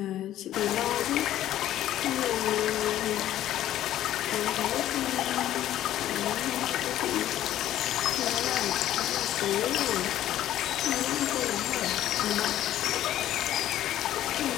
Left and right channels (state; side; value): quieter; right; 12.7 dB